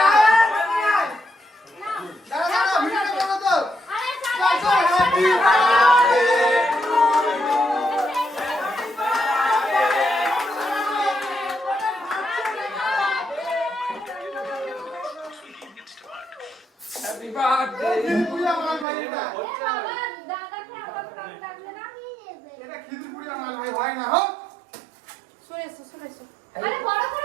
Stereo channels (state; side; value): drops out; left; at 18.9 s